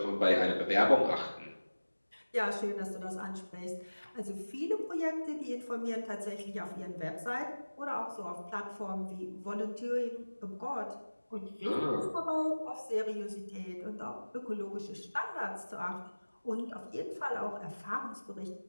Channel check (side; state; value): both; inverted; correlation -1.00